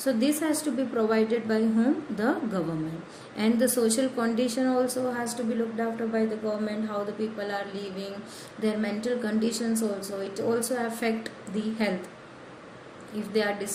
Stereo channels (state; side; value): identical; both; correlation 1.00